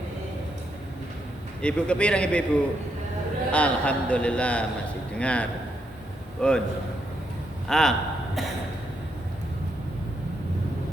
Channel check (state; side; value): normal; both; correlation 0.79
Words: Ibu kepireng ibu. Alhamdulillah masih dengar. Pun.